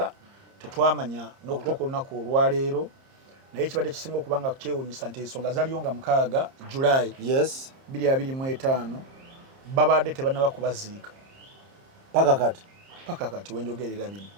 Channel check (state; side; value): late; left; 30 ms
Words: tetwamanya n'okutuuka olunaku olwaleero naye ekibadde kisinga okubanga kyewuunyisa nti ensonga zaliyo nga 6 July 2025 babadde tebannaba kubaziika paka kati wenjogerera bino